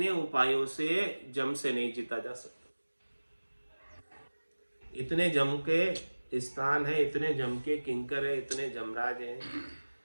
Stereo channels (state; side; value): inverted; both; correlation -1.00